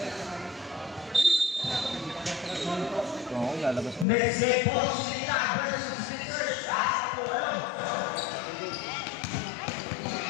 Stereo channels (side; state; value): right; drops out; at 4.0 s